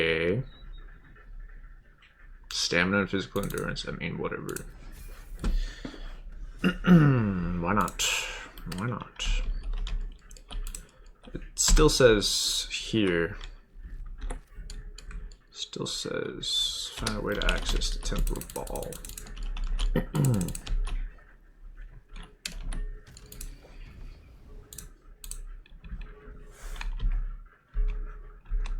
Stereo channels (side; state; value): both; identical; correlation 1.00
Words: Stamina and physical endurance. I mean, whatever. Why not? Why not? It still says here. Still says find a way to access the Temple of Baal.